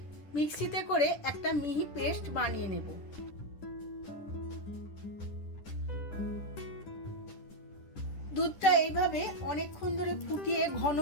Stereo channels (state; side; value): late; right; 10 ms